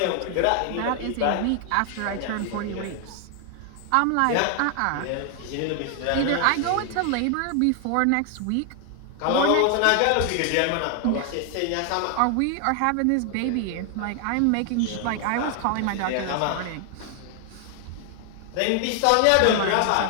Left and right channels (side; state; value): both; different; correlation 0.00